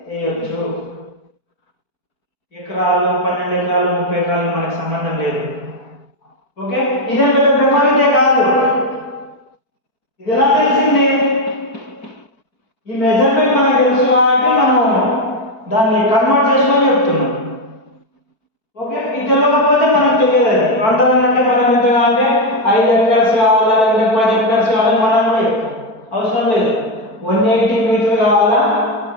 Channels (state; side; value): late; right; 4.5 ms